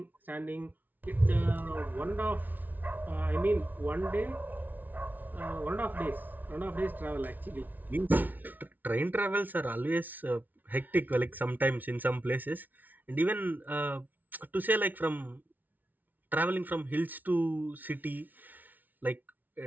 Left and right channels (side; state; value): left; late; 0.081 ms